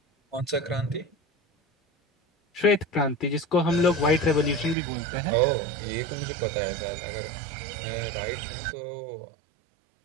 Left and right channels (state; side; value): drops out; left; at 4.8 s